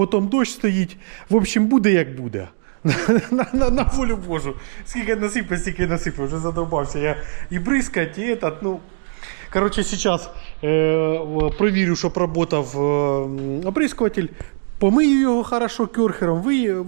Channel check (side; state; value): left; silent; digital silence